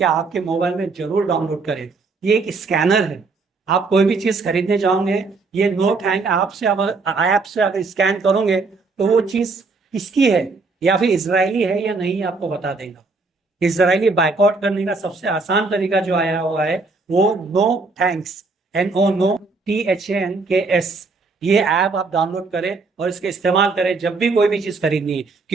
آپ کے موبائل میں ضرور ڈاؤن لوڈ کریں۔ یہ ایک اسکینر ہے، آپ کوئی بھی چیز خریدنے جاؤ گے، یہ نو تھینک ایپ سے اگر اسکین کرو گے تو وہ چیز کس کی ہے، یا پھر اسرائیلی ہے یا نہیں، آپ کو بتا دے گا۔ اسرائیلی بائک آؤٹ کرنے کا سب سے آسان طریقہ جو آیا ہوا ہے وہ نو تھینکس، NOTHANKS، یہ ایپ آپ ڈاؤن لوڈ کریں اور اس کے استعمال کریں جب بھی کوئی بھی چیز خریدنی ہے،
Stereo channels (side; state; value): left; quieter; 4.0 dB